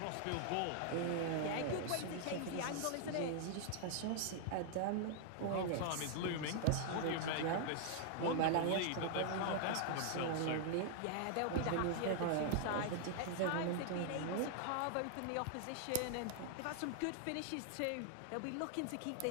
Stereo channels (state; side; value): different; both; correlation 0.00